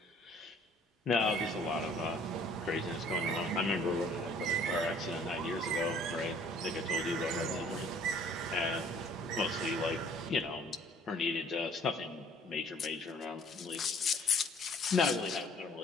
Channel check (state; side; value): normal; both; correlation 0.56